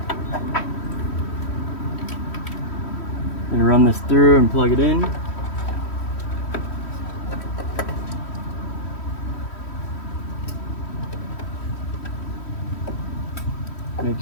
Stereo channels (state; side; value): late; right; 3.1 ms